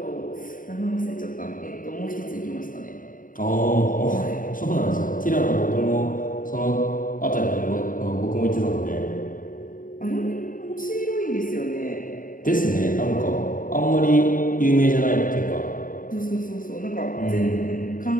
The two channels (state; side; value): late; right; 0.39 ms